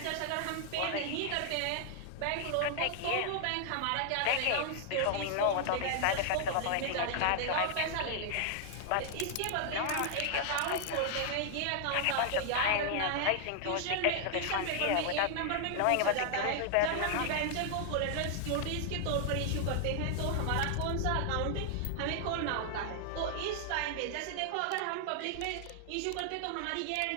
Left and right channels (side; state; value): both; different; correlation 0.00